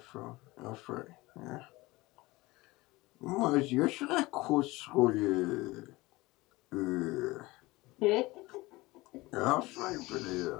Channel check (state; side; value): quieter; right; 21.1 dB